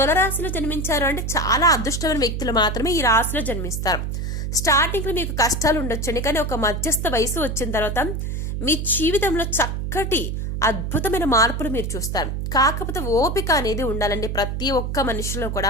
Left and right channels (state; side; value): noise; right; hum, 3 dB below the sound